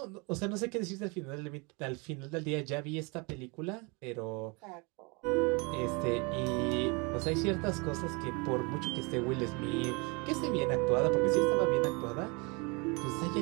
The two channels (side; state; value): left; quieter; 29.7 dB